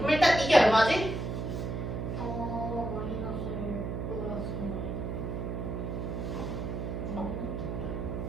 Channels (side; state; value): right; noise; hum, 3 dB below the sound